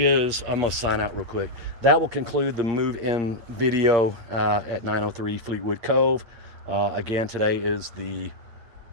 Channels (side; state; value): left; late; 8.6 ms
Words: gonna sign out real quick. That will conclude the move-in video at 903 Fleetwood Cove. Again, today is the